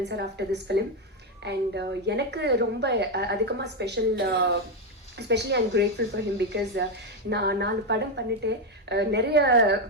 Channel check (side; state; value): both; normal; correlation 0.06